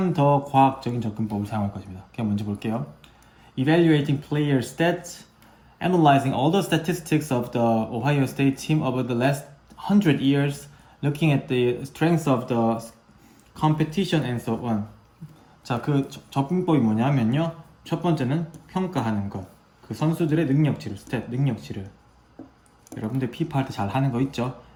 더 과학적인 접근법을 사용할 것입니다. 그냥 먼저 볼게요. Evaluating player stats, analyzing all the statistics of the Ohio State team over the last 100 years, looking at the strengths of the competition and so on. 자, 그 접근법이 뭐냐면요. 첫 번째는 평가하는 것. 그 선수들의 능력치를, 스탯, 능력치를. 여러분들 피파 할 때 잘 하는 거 있죠?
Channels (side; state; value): both; identical; correlation 1.00